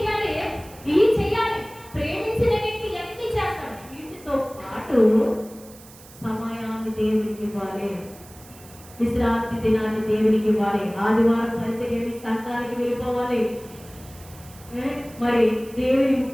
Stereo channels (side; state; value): right; noise; hiss, 21 dB below the sound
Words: ప్రేమించిన వ్యక్తి ఎన్ని చేస్తాడు. వీటితో పాటు సమయాన్ని దేవునికి ఇవ్వాలి, విశ్రాంతి దినాన్ని దేవునికి ఇవ్వాలి, ఆదివారం పరిచర్యని సంఘానికి వెళ్ళిపోవాలి. మరి దేవుని